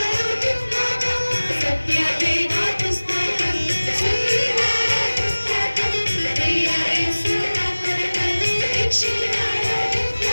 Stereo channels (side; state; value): both; inverted; correlation -1.00